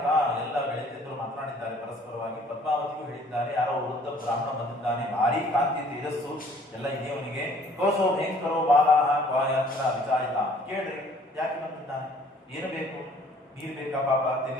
ಎಲ್ಲ ಗೆಳತಿಯರು ಮಾತನಾಡಿದ್ದಾರೆ ಪರಸ್ಪರವಾಗಿ. ಪದ್ಮಾವತಿಗೂ ಹೇಳಿದ್ದಾರೆ, ಯಾರೋ ವೃದ್ಧ ಬ್ರಾಹ್ಮಣ ಬಂದಿದ್ದಾನೆ, ಭಾರಿ ಕಾಂತಿ ತೇಜಸ್ಸು ಎಲ್ಲ ಇದೆಯವನಿಗೆ. ಕೋಸೋ ಭಯಂಕರೋ ಬಾಲಾಹ ಕ್ವಾಯತ್ರ ವಿಚಾರಿತ. ಕೇಳ್ರಿ, ಯಾಕೆ ಬಂದಿದ್ದಾನೆ, ಏನು ಬೇಕು, ನೀರು ಬೇಕಾ, ಪಾಪ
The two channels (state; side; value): normal; both; correlation 0.57